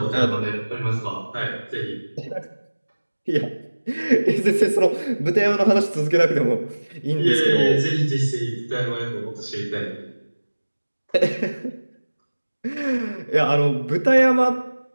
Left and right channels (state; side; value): inverted; both; correlation -1.00